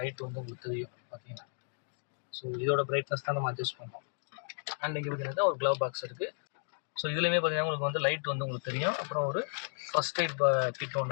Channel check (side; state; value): right; silent; digital silence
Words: லைட் வந்து உங்களுக்கு தெரியும் பார்த்தீங்கன்னா. ஸோ இதோட பிரைட்னஸ் தான் நம்ம அட்ஜஸ்ட் பண்ணோம். அண்ட் இங்கே பார்த்தீங்கன்னா ஒரு க்ளவ் பாக்ஸ் இருக்குது. ஸோ இதுலேயுமே பார்த்தீங்கன்னா உங்களுக்கு வந்து லைட் வந்து உங்களுக்கு தெரியும். அப்புறம் ஒரு ஃபர்ஸ்ட் எய்ட் கிட்